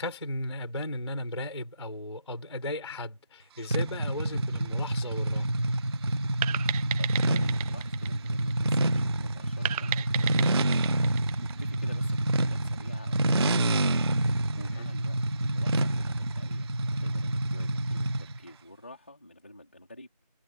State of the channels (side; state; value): both; inverted; correlation -0.83